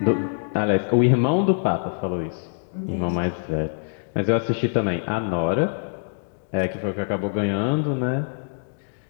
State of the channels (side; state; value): right; silent; digital silence